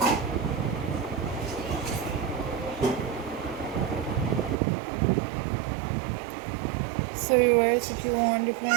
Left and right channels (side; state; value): left; drops out; at 4.5 s